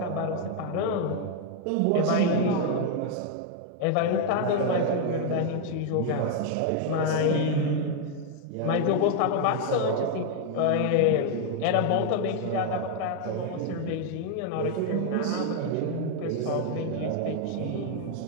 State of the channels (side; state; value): both; different; correlation 0.00